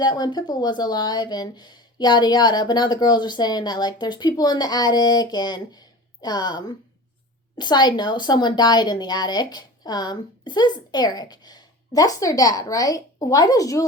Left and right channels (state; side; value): normal; both; correlation 0.35